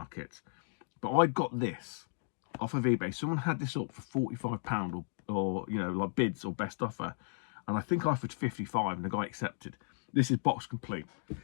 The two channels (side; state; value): right; silent; digital silence